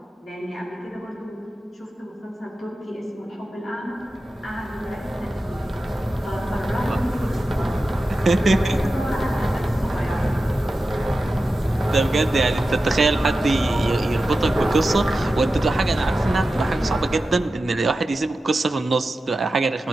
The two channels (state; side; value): normal; both; correlation 0.93